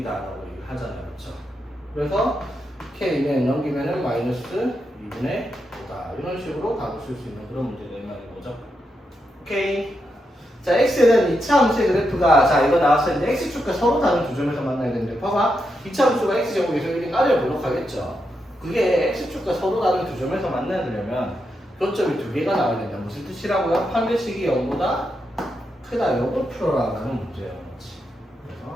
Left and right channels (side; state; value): both; normal; correlation 0.84